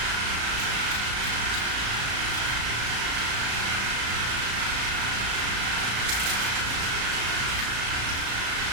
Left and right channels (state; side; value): late; left; 35 ms